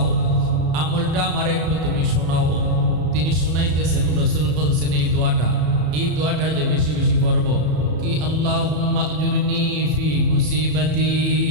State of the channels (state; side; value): late; left; 34 ms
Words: আমলটা আমার একটু তুমি শোনাও। তিনি শুনাইতেছেন, রসুল বলছেন এই দোয়াটা যে বেশি বেশি পড়ব, কি আল্লাহুম্মা আজুরনি ফি মুসিবাতি